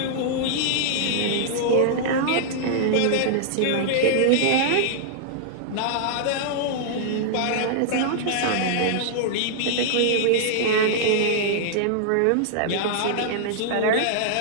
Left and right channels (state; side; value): different; both; correlation -0.01